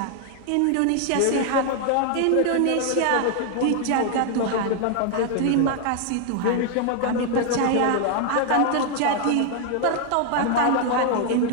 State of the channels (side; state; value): both; different; correlation 0.00